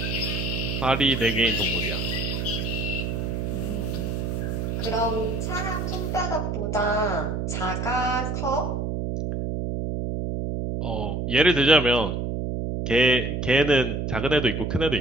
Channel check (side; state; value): right; noise; hum, 2 dB below the sound